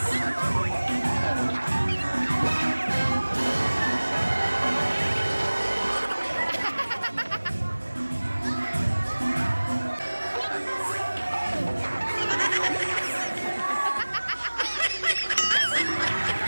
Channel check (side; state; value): both; inverted; correlation -1.00